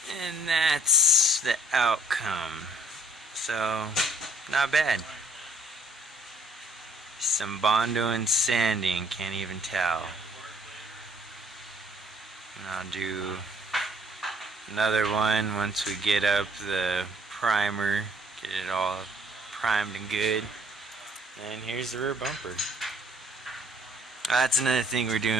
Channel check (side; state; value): both; normal; correlation 0.60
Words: And that's the outcome. So, not bad. Some Bondo and sanding, can't even tell. And I'll do another one once we get up the primer, get it all primed and good. And here's the rear bumper. That's another thing we're